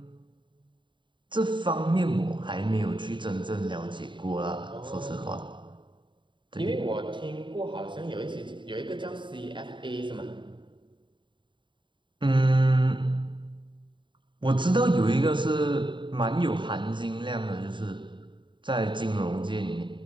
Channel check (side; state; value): left; late; 0.23 ms